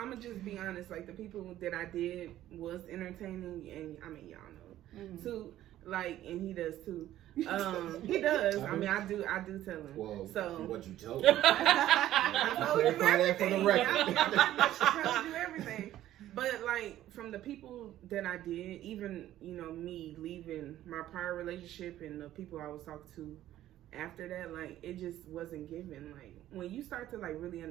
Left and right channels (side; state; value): left; quieter; 13.3 dB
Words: gonna just be honest. Like the people that I did was entertaining, and I mean, y'all know too. Like, and he does too. He does. I mean, I do tell him. Well, so what you told me? I told you everything. For the record. I told you everything. But like from the people that I did, even me leaving my prior relationship and the people I was talking to after that, like it just wasn't given. Like when you start to like really